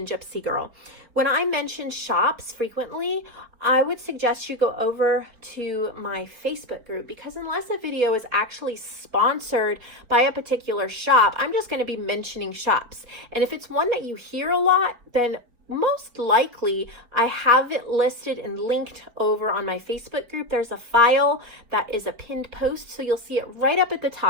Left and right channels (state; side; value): late; left; 4.3 ms